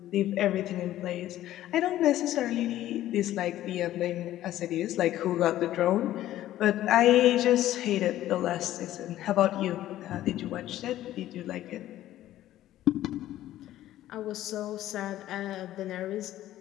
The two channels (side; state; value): right; quieter; 13.7 dB